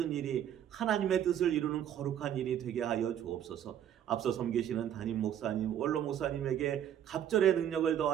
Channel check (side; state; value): left; quieter; 10.1 dB